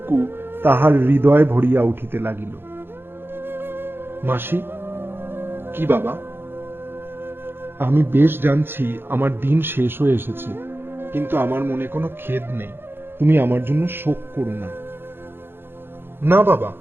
তাহার হৃদয় ভরিয়া উঠিতে লাগিল। মাসি। কি বাবা? আমি বেশ জানছি আমার দিন শেষ হয়ে এসেছে, কিন্তু আমার মনে কোনো খেদ নেই। তুমি আমার জন্য শোক করো না। না বাবা,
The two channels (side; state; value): left; late; 0.10 ms